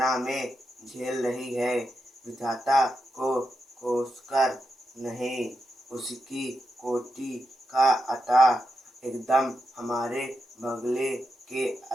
में झेल रही है। विधाता को कोसकर नहीं, उसकी कोटि का अता एकदम हमारे बगले के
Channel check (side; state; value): both; normal; correlation 0.87